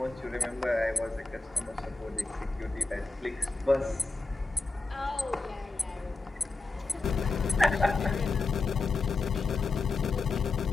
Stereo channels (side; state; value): right; quieter; 3.7 dB